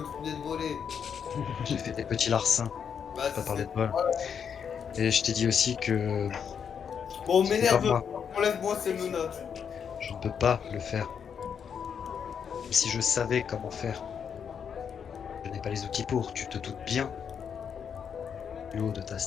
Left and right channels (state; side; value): quieter; right; 7.3 dB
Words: venais de voler. J'ai fait des petits larcins. Bah, Pas parler c'est- de vol. Et je t'ai dit aussi que Bon, c'était m'énerve, pas moi. enlève-moi ces menottes. Je ne peux pas le faire. Même si je savais comment faire. Je n'ai pas les outils pour, tu te doutes bien, du haut de ta